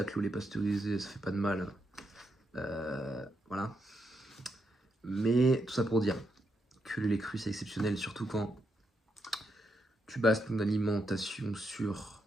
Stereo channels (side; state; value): both; normal; correlation 0.82